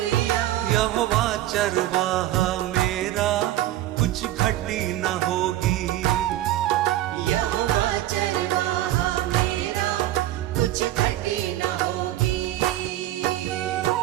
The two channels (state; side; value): quieter; left; 14.2 dB